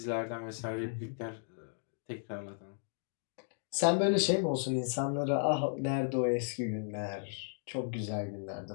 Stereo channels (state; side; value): silent; right; digital silence